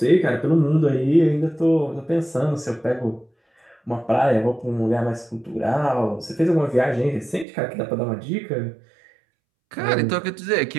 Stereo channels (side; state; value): left; drops out; at 7.5 s